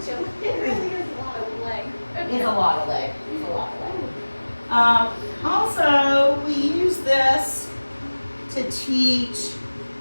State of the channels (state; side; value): inverted; both; correlation -1.00